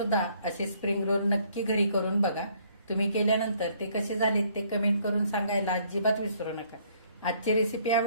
असे स्प्रिंग रोल नक्की घरी करून बघा. तुम्ही केल्यानंतर ते कसे झालेत ते कमेंट करून सांगायला अजिबात विसरू नका. आजची रेसिपी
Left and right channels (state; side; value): inverted; both; correlation -0.64